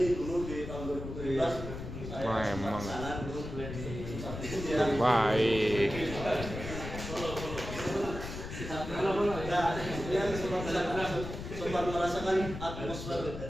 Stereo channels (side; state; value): left; noise; rumble, 8 dB below the sound